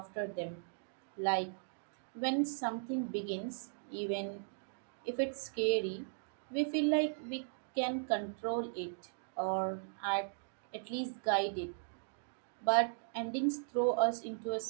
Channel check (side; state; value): left; silent; digital silence